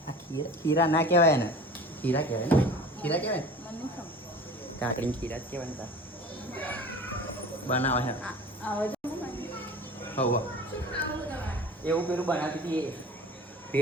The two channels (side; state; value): both; normal; correlation 0.40